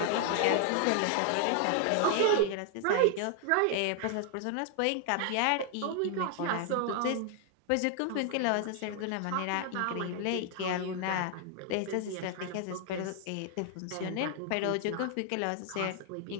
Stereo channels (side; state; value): both; different; correlation 0.00